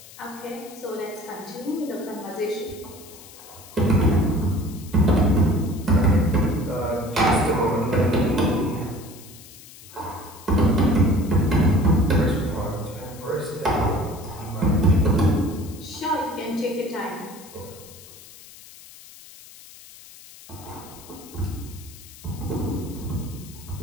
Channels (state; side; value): noise; left; hiss, 19 dB below the sound